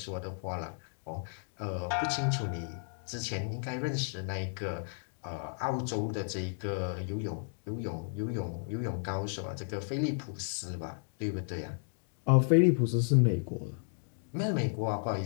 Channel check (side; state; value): right; silent; digital silence